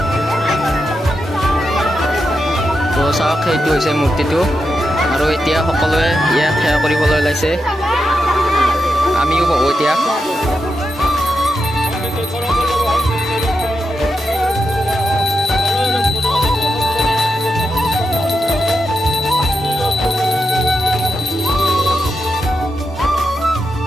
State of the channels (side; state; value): both; normal; correlation 0.87